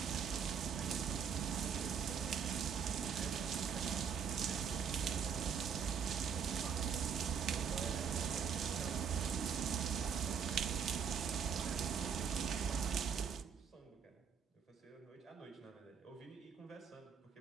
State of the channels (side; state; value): left; quieter; 7.0 dB